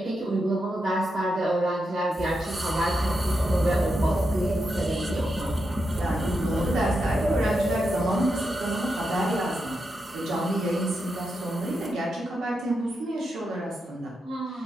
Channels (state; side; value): normal; both; correlation 0.86